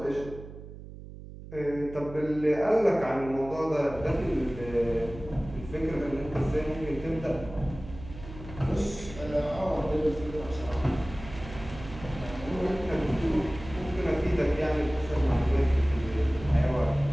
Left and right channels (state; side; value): noise; right; hum, 14 dB below the sound